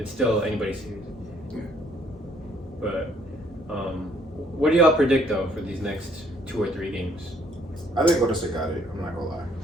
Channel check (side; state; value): both; normal; correlation 0.65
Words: still anybody's series. Yeah. But what do y'all predict though for these next 2 or 3 games? I think Golden State got it. I'm not gonna lie.